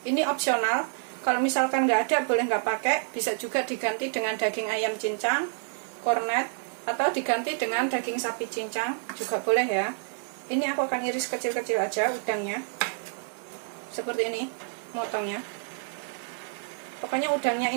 Ini opsional. Kalau misalkan nggak ada, boleh nggak pakai. Bisa juga diganti dengan daging ayam cincang, kornet, atau diganti dengan daging sapi cincang juga boleh ya. Ini aku akan iris kecil-kecil aja udangnya. Seperti ini, motongnya. Pokoknya udangnya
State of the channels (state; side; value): silent; left; digital silence